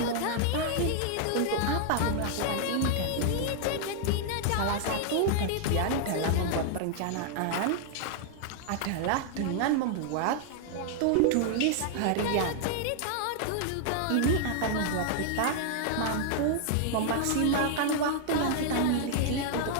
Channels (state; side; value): different; both; correlation -0.01